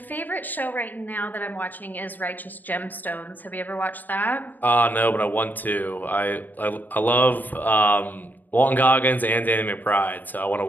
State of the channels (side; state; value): right; late; 0.087 ms